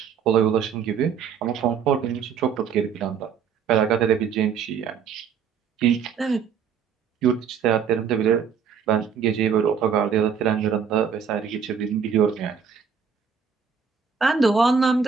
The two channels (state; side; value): quieter; left; 6.8 dB